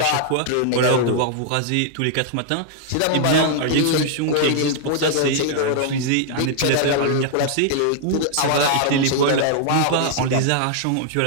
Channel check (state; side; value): different; both; correlation -0.01